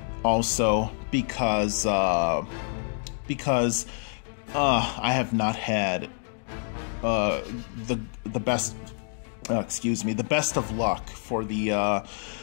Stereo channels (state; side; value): silent; right; digital silence